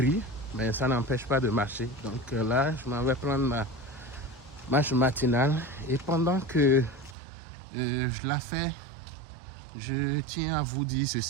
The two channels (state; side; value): drops out; left; at 7.2 s